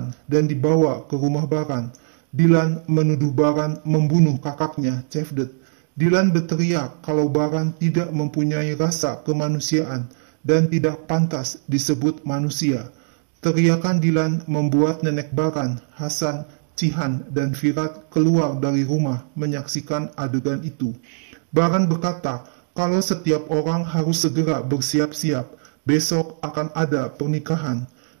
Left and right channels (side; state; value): left; silent; digital silence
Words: dan dibawa ke rumah Baran. Dilan menuduh Baran membunuh kakaknya, Cevdet. Dilan berteriak kalau Baran tidak mempunyai rasa kemanusiaan dan tidak pantas disebut manusia. Teriakan Dilan membuat nenek Baran, Hasan, Cihan, dan Firat keluar dari rumah menyaksikan adegan itu. Baran berkata kalau setiap orang harus segera bersiap-siap, besok akan ada pernikahan.